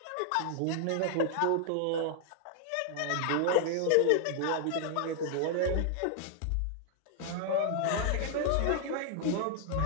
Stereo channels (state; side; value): different; both; correlation 0.00